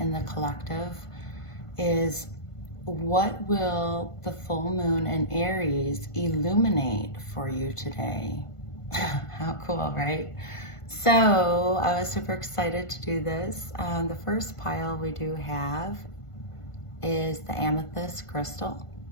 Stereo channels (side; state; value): right; late; 1.5 ms